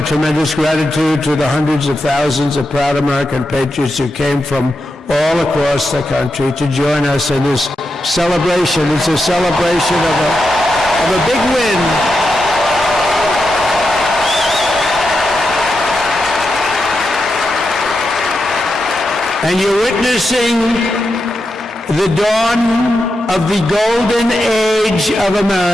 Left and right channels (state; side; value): normal; both; correlation 0.87